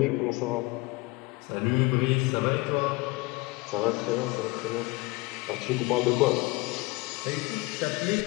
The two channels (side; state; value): right; quieter; 23.8 dB